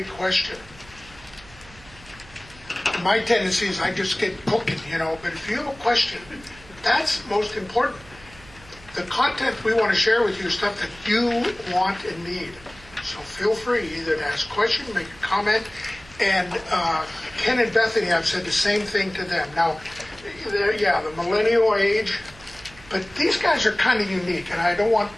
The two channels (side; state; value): right; noise; hum, 22 dB below the sound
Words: question, my tendency is I just get cooking, but if you have a question, that's most important. The content we want to share with you is stuff that you want and need. So feel free either to ask a question, make a comment, and Ken and Bethany, I've said the same thing to them. Now, the millennial age, but these guys are kind of unique, and I don't want